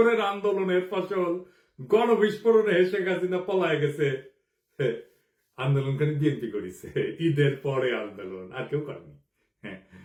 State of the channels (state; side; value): identical; both; correlation 1.00